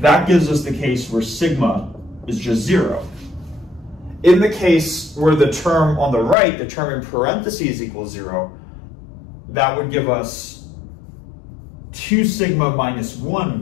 that gives us the case where sigma is just 0. In the case where the term on the right, the term in parentheses equals 0, that would give us 2 sigma minus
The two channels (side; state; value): right; drops out; at 6.4 s